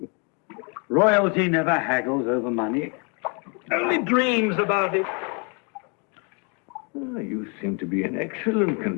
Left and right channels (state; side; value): quieter; right; 35.0 dB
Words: Royalty never haggles over money. Only dreams about it. Ah, you seem to be in excellent